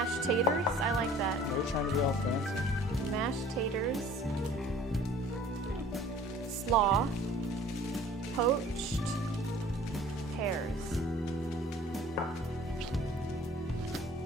taters? I like that. They're trying to be all fancy. Mashed taters. Slaw. Poached pears.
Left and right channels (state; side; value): normal; both; correlation 0.49